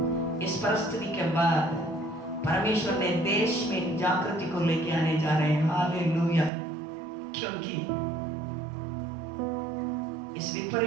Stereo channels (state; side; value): drops out; left; at 6.5 s